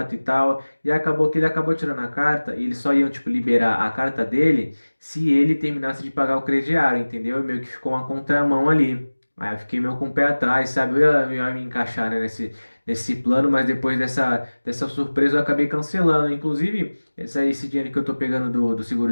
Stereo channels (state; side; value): inverted; both; correlation -1.00